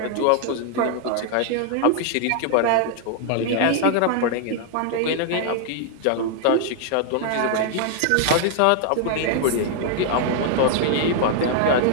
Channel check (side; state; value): both; different; correlation 0.00